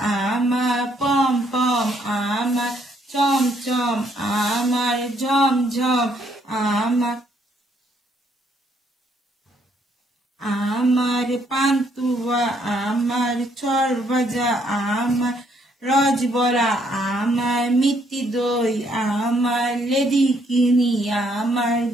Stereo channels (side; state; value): both; normal; correlation 0.69